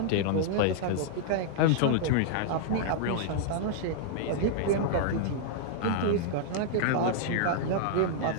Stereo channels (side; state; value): both; different; correlation -0.01